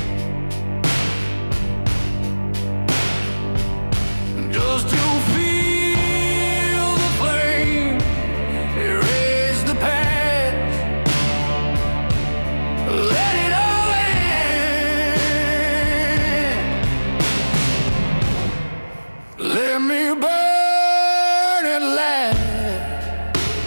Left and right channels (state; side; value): inverted; both; correlation -1.00